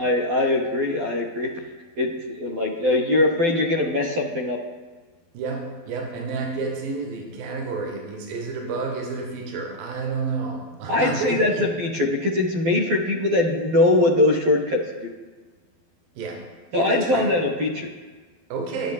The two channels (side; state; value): left; late; 12 ms